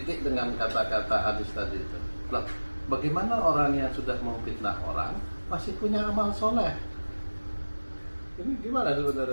dengan kata-kata hadis tadi itu. Loh, bagaimana orang yang sudah memfitnah orang masih punya amal soleh? Ini gimana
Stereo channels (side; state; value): both; inverted; correlation -1.00